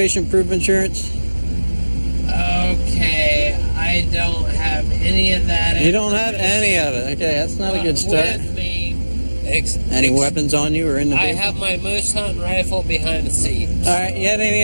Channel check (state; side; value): inverted; both; correlation -1.00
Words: proof of insurance. Okay, I don't have any of that. You don't have any of it. Okay, that's not a good start. With me. Any weapons on you or in the I vehicle? have my moose hunting rifle behind the seat. All right, you had